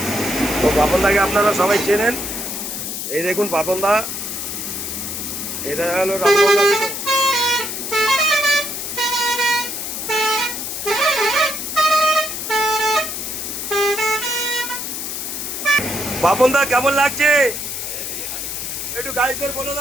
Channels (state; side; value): noise; left; hiss, 5 dB below the sound